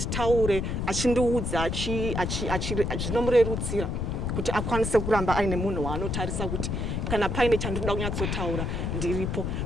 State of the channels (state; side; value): noise; left; rumble, 1 dB below the sound